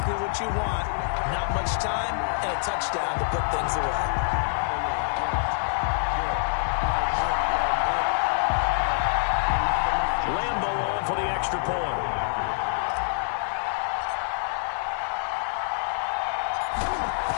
what you want. Not much time and a touchdown to put things away. Lambo on for the extra point.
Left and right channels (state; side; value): silent; right; digital silence